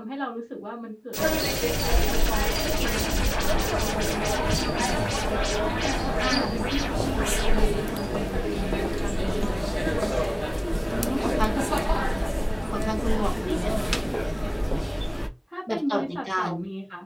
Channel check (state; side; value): identical; both; correlation 1.00